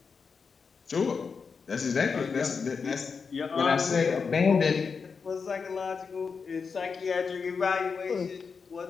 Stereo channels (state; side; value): quieter; right; 5.4 dB